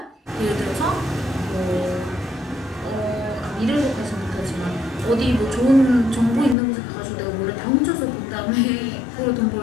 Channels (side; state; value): right; drops out; at 6.6 s